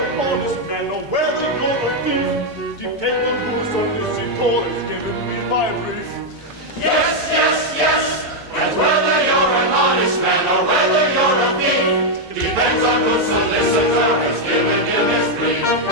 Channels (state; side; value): normal; both; correlation 0.01